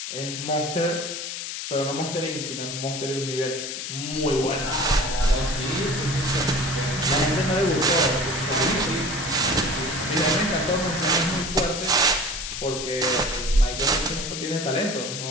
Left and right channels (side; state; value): left; noise; hiss, 6 dB below the sound